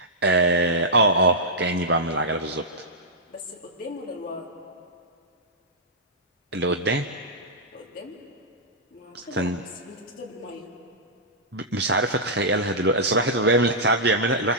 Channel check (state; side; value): normal; both; correlation -0.10